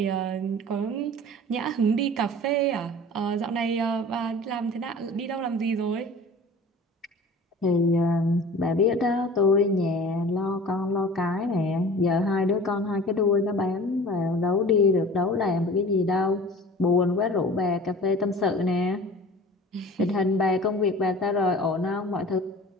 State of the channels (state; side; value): normal; both; correlation 0.42